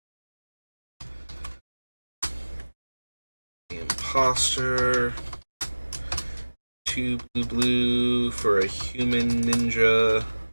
The Imposter. 2 blue for a human ninja.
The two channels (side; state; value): both; inverted; correlation -1.00